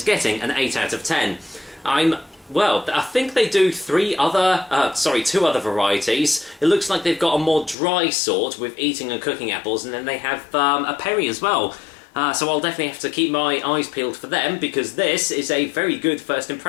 getting an 8 out of 10. Well, I think they do two other varieties. It looks like they've got a more dry sort with eating and cooking apples, and then they have a perry as well. So I'll definitely have to keep my eyes peeled for them, because this is a very good first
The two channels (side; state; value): right; drops out; at 7.8 s